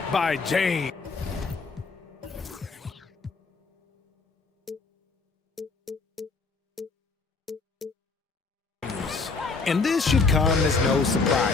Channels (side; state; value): right; quieter; 4.3 dB